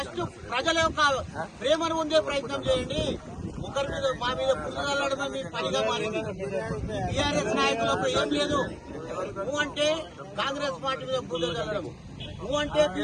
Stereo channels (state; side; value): identical; both; correlation 1.00